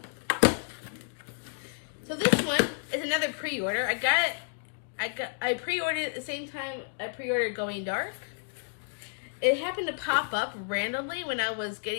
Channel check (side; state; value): right; silent; digital silence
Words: So this one is another pre-order. I pre-ordered it at the same time I pre-ordered Going Dark. It happened to pop up randomly when I was